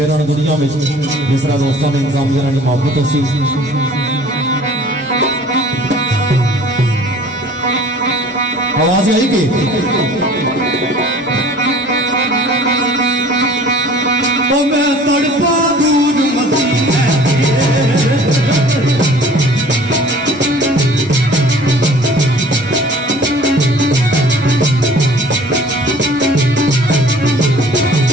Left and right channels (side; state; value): both; normal; correlation 0.49